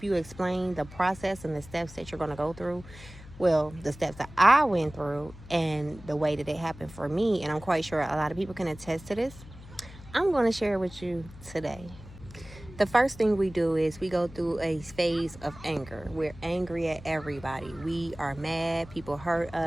you explain the process and the steps that you're going to go through, well, the steps that I went through and the way that it happened for me, and I'm quite sure a lot of people can attest to this, I'm going to share with you today. The first thing we do is we go through a phase of anger. We're angry at everybody. We are mad. People hurt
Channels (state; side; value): noise; left; hum, 17 dB below the sound